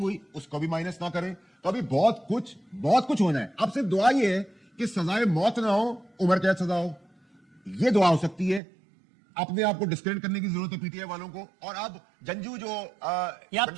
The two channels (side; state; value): left; drops out; at 8.6 s